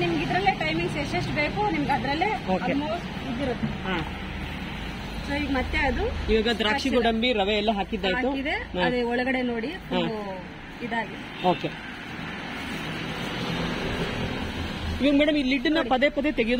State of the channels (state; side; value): identical; both; correlation 1.00